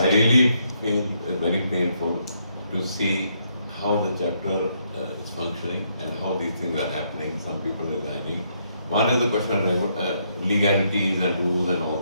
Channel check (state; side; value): inverted; both; correlation -0.74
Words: really feel very painful to see how the chapter is functioning and how these things are happening. Some people resigning. One is the question of legalities and rules and all